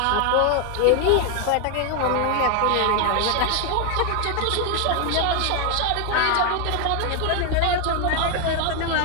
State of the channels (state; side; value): different; both; correlation 0.01